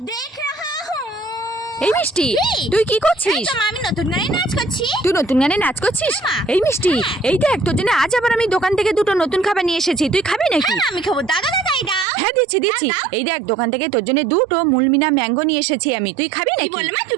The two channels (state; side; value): drops out; left; at 12.1 s